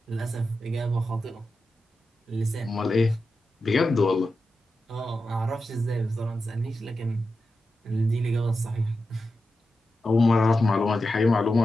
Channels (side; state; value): both; normal; correlation 0.90